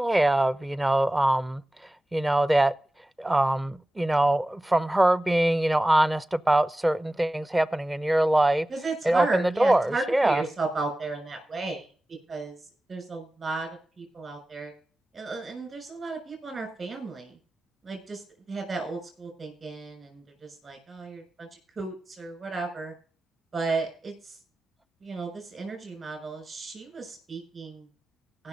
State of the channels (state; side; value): normal; both; correlation 0.96